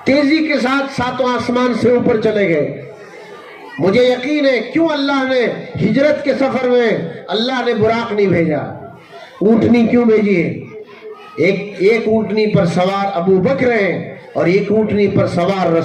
तेजी के साथ 7वां आसमान से ऊपर चले गए। मुझे यकीन है क्यों अल्लाह ने हिजरत के सफर में अल्लाह ने बुराक नहीं भेजा, ऊँटनी क्यों भेजी है? एक ऊँटनी पर सवार अबू बकर हैं और एक ऊँटनी पर सवार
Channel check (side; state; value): both; identical; correlation 1.00